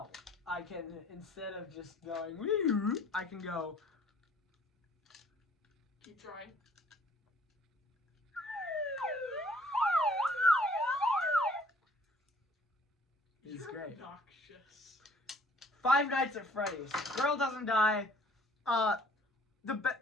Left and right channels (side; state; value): both; normal; correlation 0.57